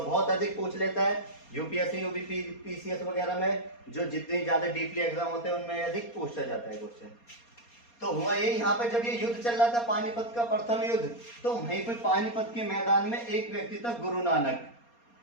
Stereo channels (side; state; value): right; late; 4.2 ms